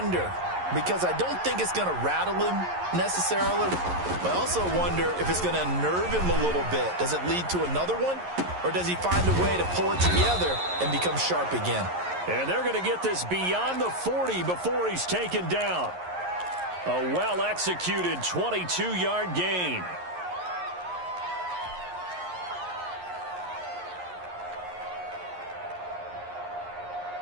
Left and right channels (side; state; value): left; late; 11 ms